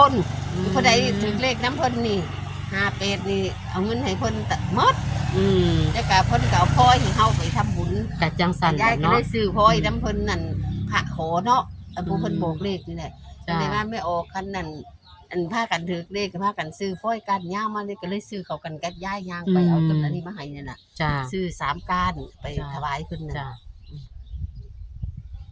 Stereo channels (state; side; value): identical; both; correlation 1.00